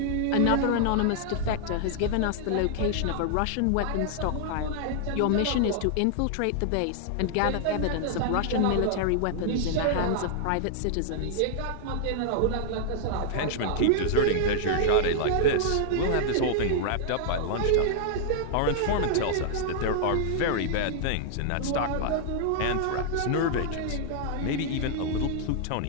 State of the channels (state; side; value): different; both; correlation -0.01